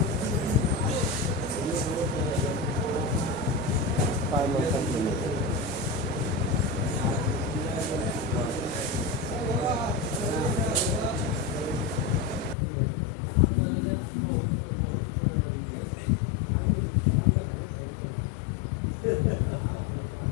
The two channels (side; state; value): right; drops out; at 12.6 s